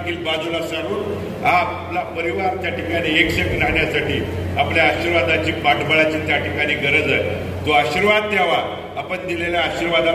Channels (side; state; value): both; identical; correlation 1.00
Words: बाजूला सारून हा आपला परिवार त्या ठिकाणी एकशेक राहण्यासाठी आपल्या आशीर्वादाची, पाठबळाची त्या ठिकाणी गरज आहे. तो आशीर्वाद द्यावा. आपण दिलेल्या